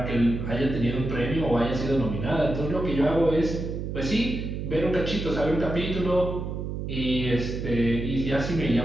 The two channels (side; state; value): right; noise; hum, 5 dB below the sound